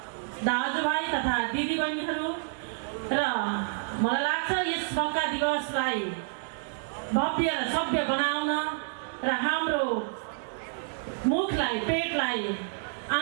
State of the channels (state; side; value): silent; left; digital silence